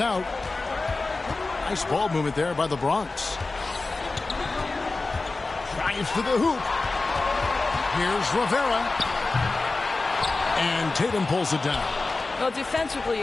Nice ball movement there by the Bronx. Drives to the hoop. Here's Rivera. And Tatum pulls it down. Well, defensively,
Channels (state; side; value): quieter; right; 3.5 dB